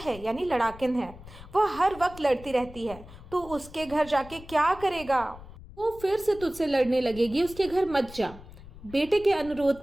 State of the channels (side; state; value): left; noise; rumble, 17 dB below the sound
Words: यानी लड़ाकिन है। वह हर वक्त लड़ती रहती है। तू उसके घर जाके क्या करेगा। वो फिर से तुझसे लड़ने लगेगी, उसके घर मत जा। बेटे के अनुरोध